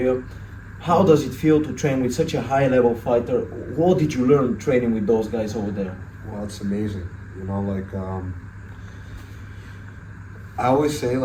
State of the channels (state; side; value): identical; both; correlation 1.00